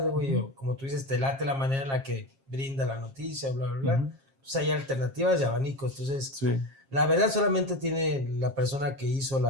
güey, o como tú dices, te late la manera en la que brinda la noticia, bla, bla, bla. Entonces hay alternativas y abanicos. Entonces, la verdad solamente tiene la persona que hizo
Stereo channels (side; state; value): left; late; 7.4 ms